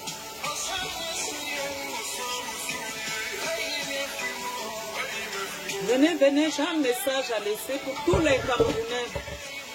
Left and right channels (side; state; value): both; identical; correlation 1.00